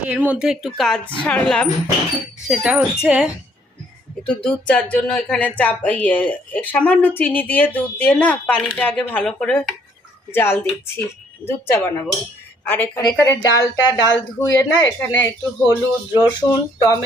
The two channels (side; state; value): both; normal; correlation 0.65